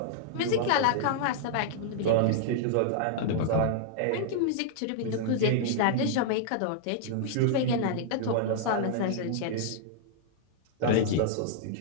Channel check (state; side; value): different; both; correlation -0.01